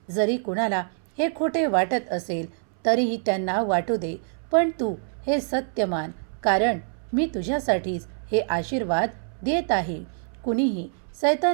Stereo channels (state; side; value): silent; left; 61 dB below the other